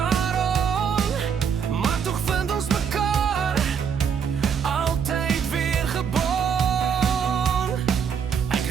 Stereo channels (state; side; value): quieter; left; 7.1 dB